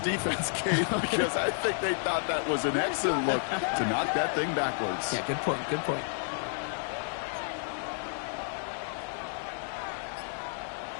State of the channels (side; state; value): right; silent; digital silence